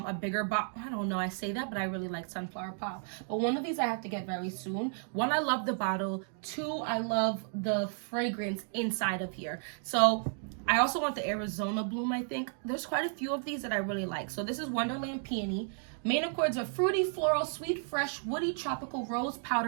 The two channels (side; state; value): left; silent; 56 dB below the other